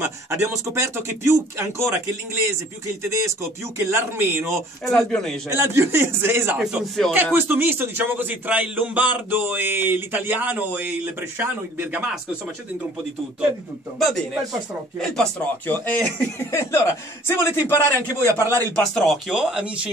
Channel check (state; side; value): normal; both; correlation 0.53